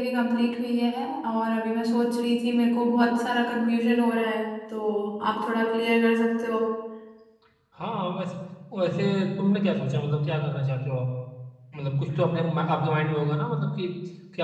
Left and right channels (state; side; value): identical; both; correlation 1.00